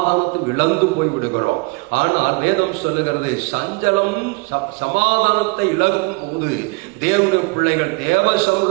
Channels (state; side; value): quieter; left; 27.2 dB